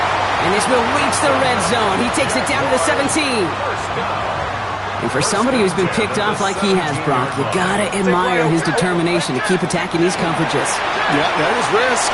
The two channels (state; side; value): identical; both; correlation 1.00